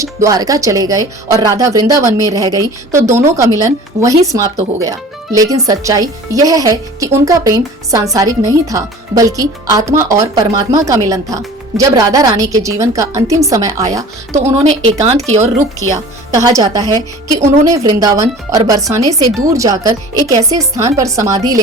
द्वारका चले गए और राधा वृंदावन में रह गई तो दोनों का मिलन वहीं समाप्त हो गया। लेकिन सच्चाई यह है कि उनका प्रेम सांसारिक नहीं था, बल्कि आत्मा और परमात्मा का मिलन था। जब राधा रानी के जीवन का अंतिम समय आया तो उन्होंने एकांत की ओर रुख किया। कहा जाता है कि उन्होंने वृंदावन और बरसाने से दूर जाकर एक ऐसे स्थान पर समाधि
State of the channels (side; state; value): both; normal; correlation 0.42